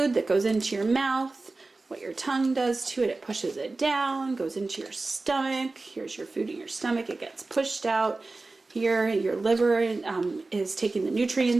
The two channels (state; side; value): quieter; left; 3.4 dB